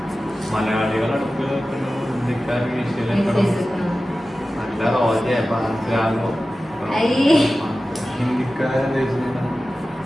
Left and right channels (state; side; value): normal; both; correlation 0.95